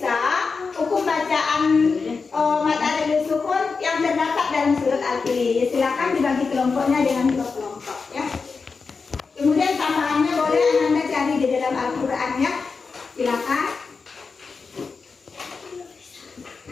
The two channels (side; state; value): right; quieter; 4.8 dB